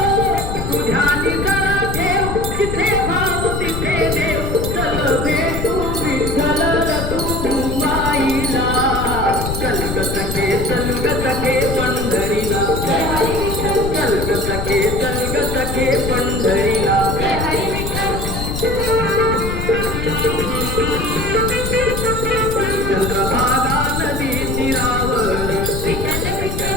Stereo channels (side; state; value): left; noise; rumble, 3 dB below the sound